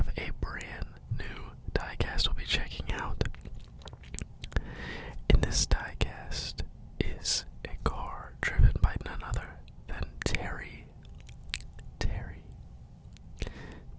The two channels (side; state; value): both; identical; correlation 1.00